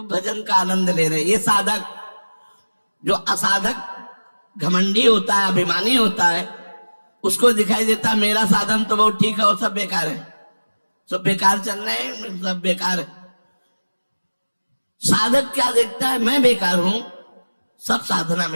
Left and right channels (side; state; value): both; inverted; correlation -1.00